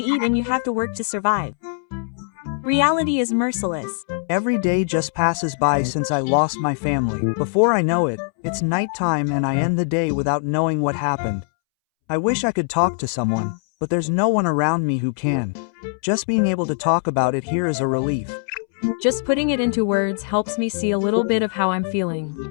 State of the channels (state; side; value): silent; right; 65 dB below the other